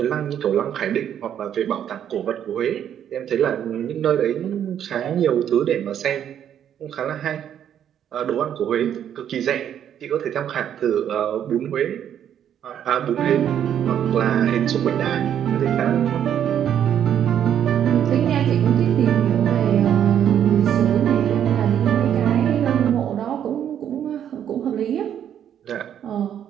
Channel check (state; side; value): quieter; left; 9.6 dB